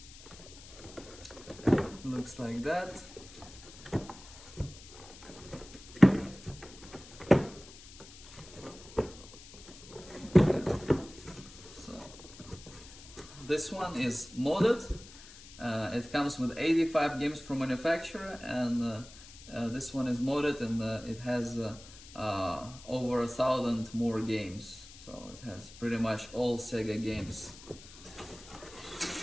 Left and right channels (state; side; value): noise; left; hiss, 18 dB below the sound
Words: Looks like that. So this one is modded. It comes with 85 games from manufacturer, and this one is modded, and it has over 1,000 more games. So it has pretty much all Sega games.